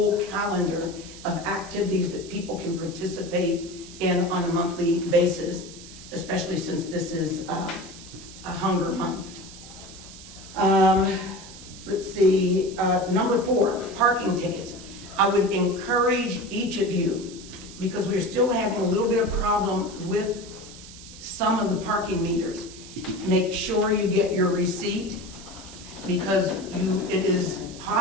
calendar of activities that people can participate in on a monthly basis, especially since this is a hunger month. Let's see, number 4, parking tickets. I would encourage each of you, because we're still having a little bit of problem with some of the parking meters. Make sure you get your receipt, because it is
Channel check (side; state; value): right; noise; hiss, 16 dB below the sound